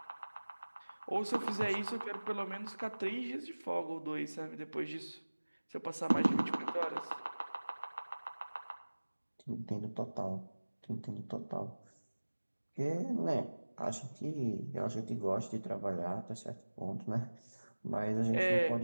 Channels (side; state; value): both; inverted; correlation -1.00